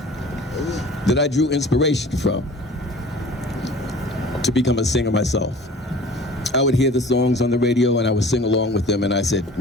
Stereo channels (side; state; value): both; normal; correlation 0.45